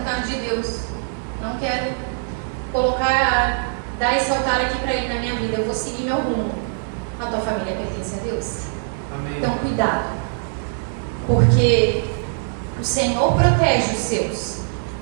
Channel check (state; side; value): silent; left; 63 dB below the other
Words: de Deus, não quero dar esse altar aqui para Ele na minha vida, eu vou seguir meu rumo. A tua família pertence a Deus. Amém. Então, cuidado, porque o Senhor protege os seus.